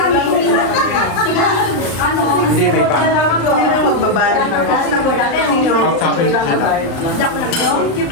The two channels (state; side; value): late; right; 35 ms